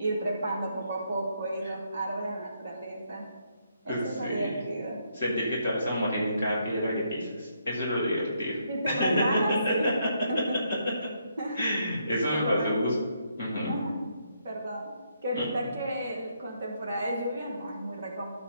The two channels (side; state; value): both; inverted; correlation -0.75